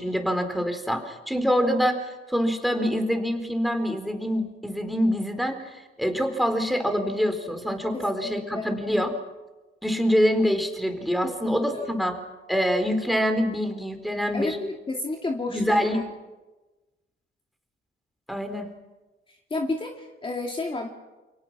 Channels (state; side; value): normal; both; correlation 0.87